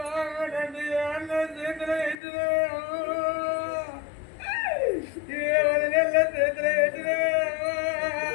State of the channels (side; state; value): right; drops out; at 2.1 s